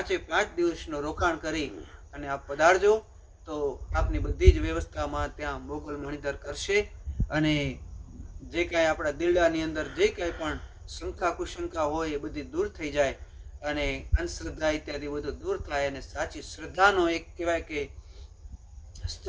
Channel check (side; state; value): both; identical; correlation 1.00